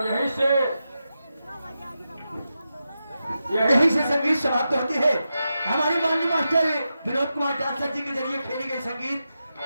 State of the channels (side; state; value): both; inverted; correlation -0.89